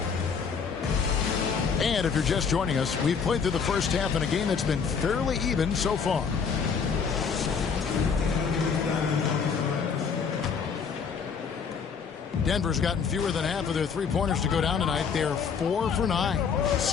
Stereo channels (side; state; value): right; quieter; 6.1 dB